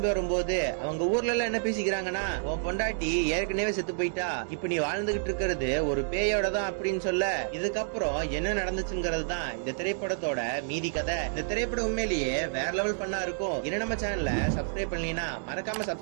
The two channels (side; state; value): left; silent; digital silence